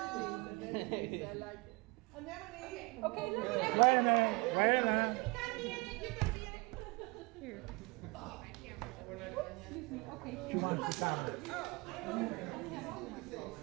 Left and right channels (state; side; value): quieter; left; 26.7 dB